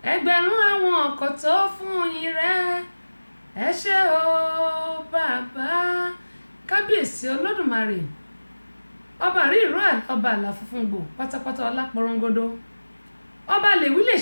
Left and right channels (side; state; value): both; inverted; correlation -1.00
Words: ẹgbẹ̀rún àwọn ọkọ̀ tó fún yín rẹ̀, ẹ ṣé o bàbá, kábíyèsí Olódùmarè. Ọba rí ìró ọba àlà funfun gbò pátápátá ọlá porongodo ọba lè wí lè